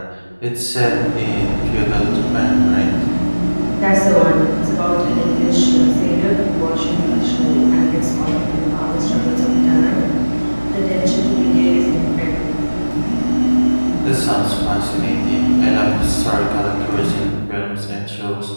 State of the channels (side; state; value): both; inverted; correlation -1.00